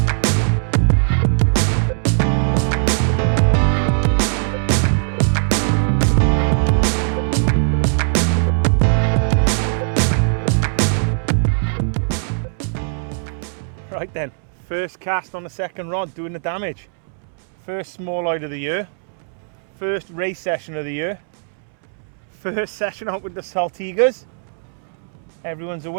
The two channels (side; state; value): left; silent; 66 dB below the other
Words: Right then, first cast on the second rod doing the damage. First small-eyed of the year. First race session of the year. First session out with the Saltigers. Everyone's a